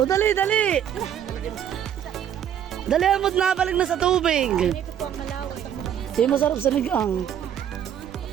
dali, dali. Dali, amot na, balik na sa tubig. Ito po ang malaway. Di masarap sa ligang.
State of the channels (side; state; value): left; quieter; 9.7 dB